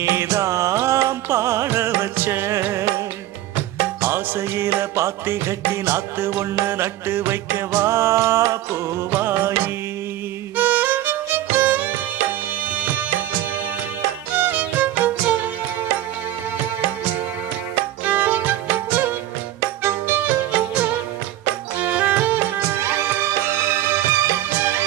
பாட வச்ச. ஆசையில பாத்தி கட்டி நாத்து ஒண்ணு நட்டு வைக்கவா பூவாயி.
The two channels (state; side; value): quieter; left; 13.6 dB